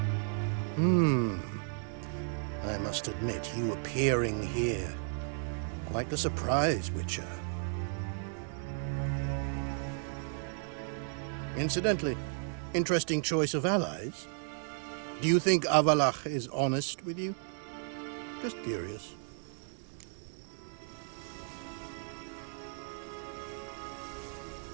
I must admit, you appearing here. Quite the surprise, Witcher. Incidentally, interesting choice of allies. Do you think Avalach is honest with you? Just curious.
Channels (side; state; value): left; silent; 55 dB below the other